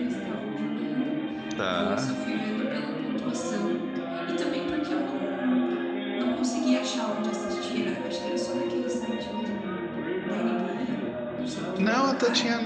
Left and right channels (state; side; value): identical; both; correlation 1.00